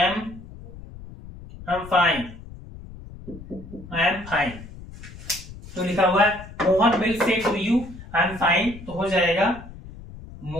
fine, I am fine, तो लिखा हुआ है Mohan will say to you I am fine, तो हो जाएगा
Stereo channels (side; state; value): left; noise; rumble, 15 dB below the sound